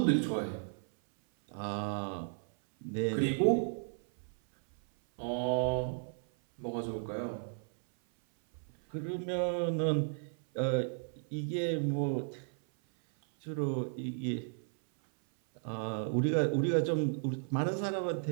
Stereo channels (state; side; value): silent; left; 55 dB below the other